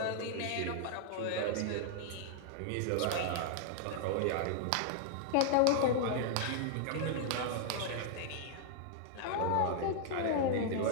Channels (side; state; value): both; different; correlation -0.01